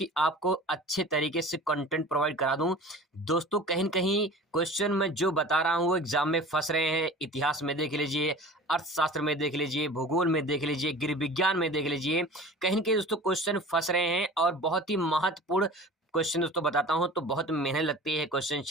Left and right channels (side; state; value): both; normal; correlation 0.40